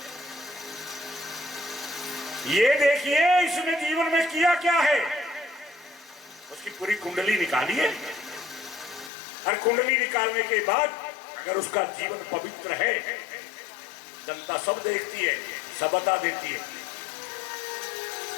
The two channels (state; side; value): drops out; right; at 9.1 s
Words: ये देखिए इसने जीवन में किया क्या है, उसकी पूरी कुंडली निकाली है, और कुंडली निकालने के बाद अगर उसका जीवन पवित्र है, जनता सब देखती है, सब बता देती है।